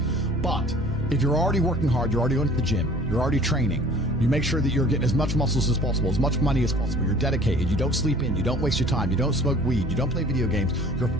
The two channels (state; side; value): noise; right; hum, 8 dB below the sound